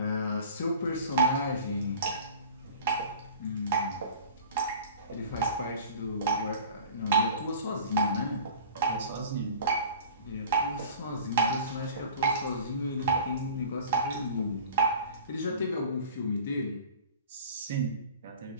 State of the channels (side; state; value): both; inverted; correlation -0.41